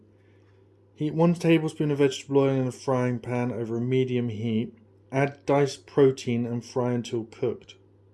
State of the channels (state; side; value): identical; both; correlation 1.00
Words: Heat 1 tablespoon of vegetable oil in a frying pan over a medium heat. Add diced protein and fry until cooked.